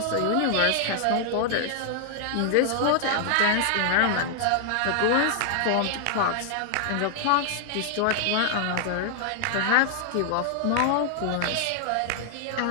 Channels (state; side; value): different; both; correlation 0.00